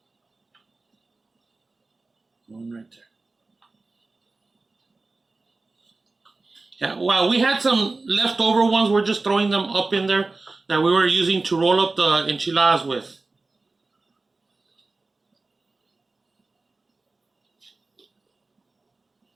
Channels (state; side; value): quieter; left; 3.5 dB